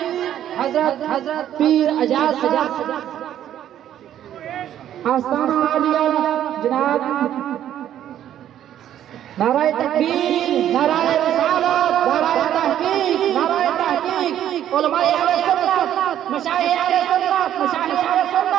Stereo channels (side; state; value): left; quieter; 11.1 dB